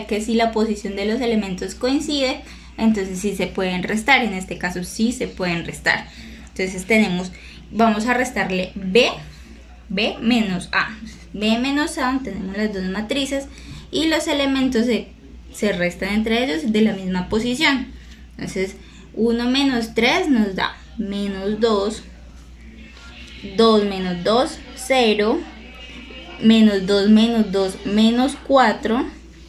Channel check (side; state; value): both; identical; correlation 1.00